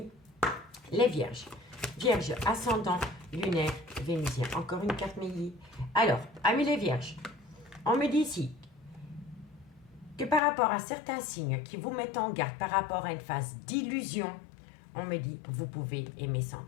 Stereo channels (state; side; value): drops out; right; at 10.4 s